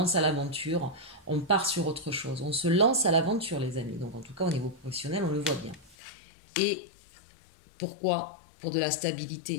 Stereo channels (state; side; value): drops out; right; at 6.0 s